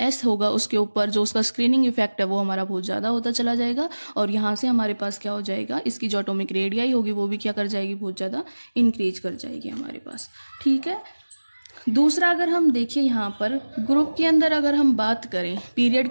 होगा उसके ऊपर जो उसका स्क्रीनिंग इफेक्ट है वो हमारा बहुत ज़्यादा होता चला जाएगा। और यहाँ से हमारे पास क्या हो जाएगा, इसकी जो एटॉमिक रेडियाई होगी वो भी क्या कर जाएगी, बहुत ज़्यादा इंक्रीज कर जाएगी हमारे पास। ठीक है, दूसरा अगर हम देखिए यहाँ पर ग्रुप के अंदर अगर हम बात करें, पीरियड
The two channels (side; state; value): both; inverted; correlation -1.00